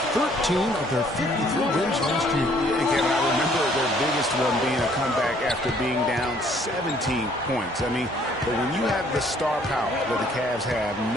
13 of their 53 wins last year. And Kevin, I remember their biggest one being a comeback after being down 17 points. I mean, but when you have the star power that the Cavs have,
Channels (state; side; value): normal; both; correlation 0.61